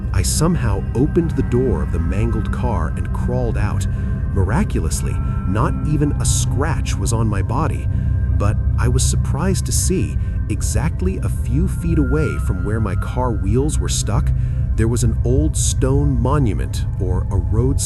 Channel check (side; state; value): both; identical; correlation 1.00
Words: I somehow opened the door of the mangled car and crawled out. Miraculously, not even a scratch was on my body, but I was surprised to see, exactly a few feet away from where my car wheels were stuck, there was an old stone monument or a